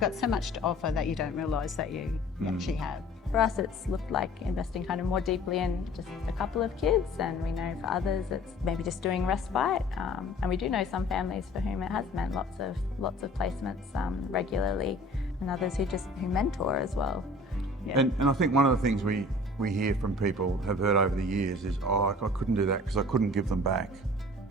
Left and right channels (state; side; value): normal; both; correlation 0.47